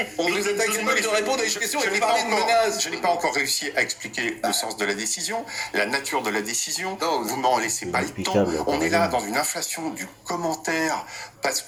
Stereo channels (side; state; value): both; identical; correlation 1.00